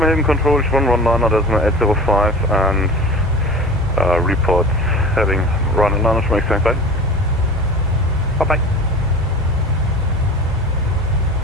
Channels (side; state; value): both; normal; correlation 0.36